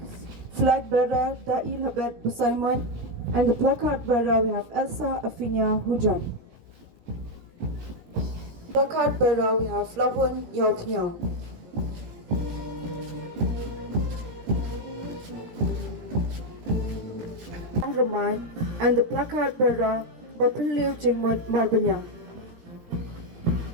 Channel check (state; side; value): late; left; 17 ms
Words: Flag bearer Da'i Labet Busaimon, and the placard bearer we have Elsa Afinia Hujam. Placard bearer we have Flavon Yaupniao. Ramai, and the placard bearer Bapiliu Jingmut Marbanya.